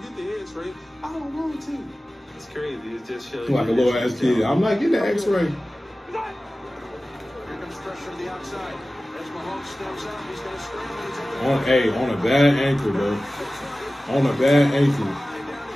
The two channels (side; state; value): both; normal; correlation 0.96